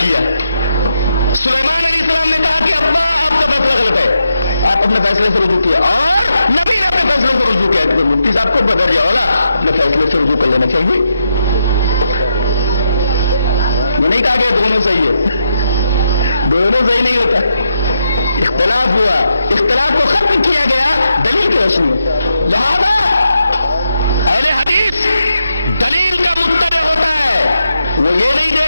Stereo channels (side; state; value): both; inverted; correlation -0.83